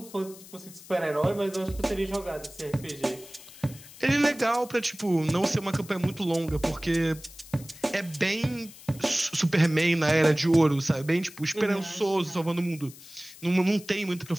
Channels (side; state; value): left; noise; hiss, 19 dB below the sound